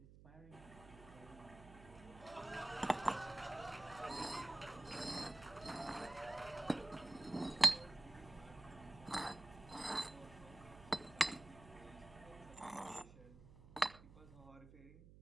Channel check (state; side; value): noise; right; hum, 18 dB below the sound